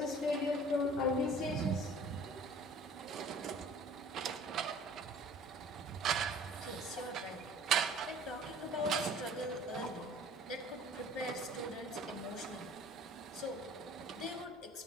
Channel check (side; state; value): both; normal; correlation 0.49